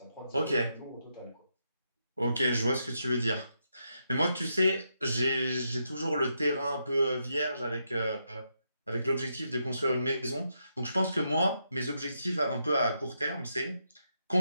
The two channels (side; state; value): both; inverted; correlation -0.81